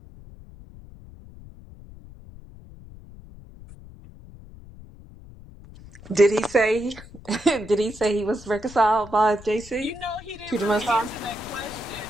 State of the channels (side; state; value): left; noise; rumble, 18 dB below the sound